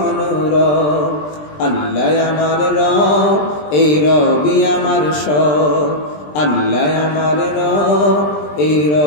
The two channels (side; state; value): right; late; 20 ms